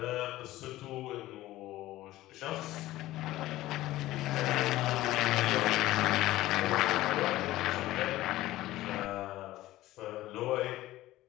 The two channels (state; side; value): quieter; right; 16.2 dB